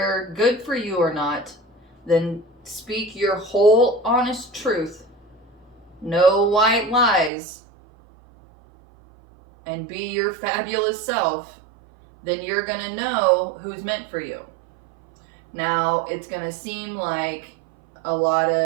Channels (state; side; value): drops out; left; at 7.3 s